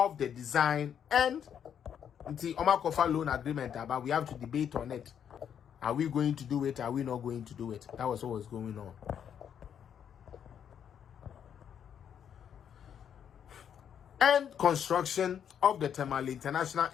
the design and the Omakofa loan agreement. But we have to debate on it. Are we going to do it? Are we not going to do it? That was what was going on. And construction of the Tamale International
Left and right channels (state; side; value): quieter; right; 8.5 dB